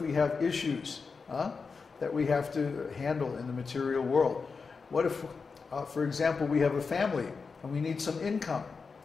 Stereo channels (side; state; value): right; quieter; 4.9 dB